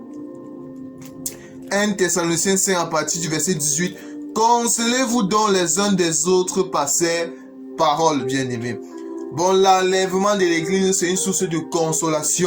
à partir du verset 18. Consolez-vous donc les uns des autres par ces paroles, bien-aimés. Bon, l'enlèvement de l'Église, c'est une source de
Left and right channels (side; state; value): both; identical; correlation 1.00